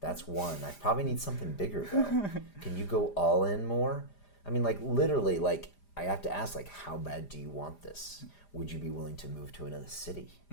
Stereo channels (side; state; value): right; late; 4.9 ms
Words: That's one. I probably need something bigger, though. Can you go all in more? I mean, like, literally, like, I have to ask, like, how bad do you want this? Would you be willing to move to another city?